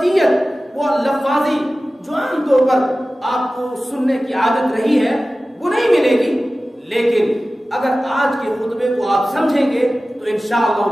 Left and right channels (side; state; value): both; normal; correlation 0.96